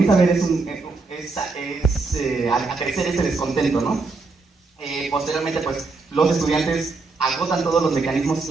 a ver a crecer ese descontento, ¿no? Posteriormente, pues, los estudiantes agotan todos los mecanismos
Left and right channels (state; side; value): quieter; left; 3.9 dB